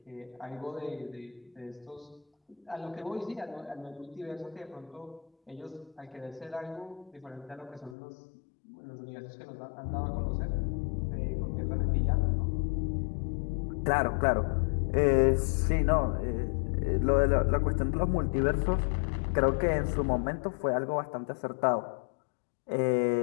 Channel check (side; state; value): right; drops out; at 8.0 s